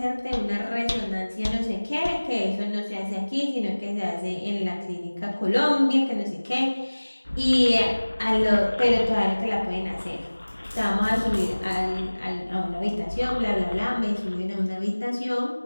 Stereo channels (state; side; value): inverted; both; correlation -1.00